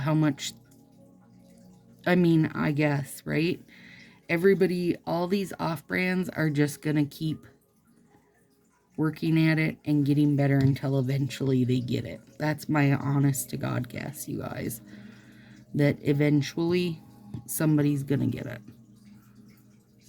much, I mean, I guess, right? Everybody, all these off-brands are just going to keep working at it and getting better until eventually they get it. That's my honest to God guess, you guys. That eventually somebody's going to get it.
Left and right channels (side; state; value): both; identical; correlation 1.00